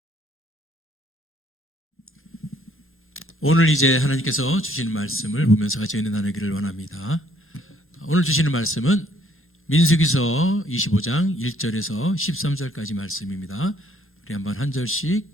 오늘 이제 하나님께서 주시는 말씀을 보면서 같이 은혜 나누기를 원합니다. 오늘 주시는 말씀은 민수기서 25장 1절에서 13절까지 말씀입니다. 우리 한번 한 절씩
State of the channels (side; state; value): both; normal; correlation 0.64